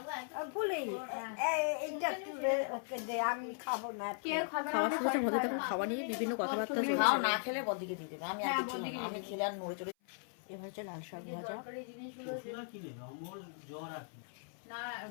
খাওয়া নিয়ে বিভিন্ন কথাবার্তা না খেলে বদিকে দিয়ে দেবে, আমি খেলে আর নড়ে চড়ে। এবার হচ্ছে লাল শাক ভাজা,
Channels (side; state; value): right; silent; 53 dB below the other